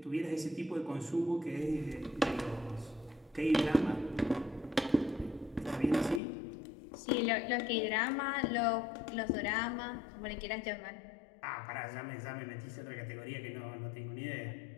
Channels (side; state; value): right; drops out; at 6.2 s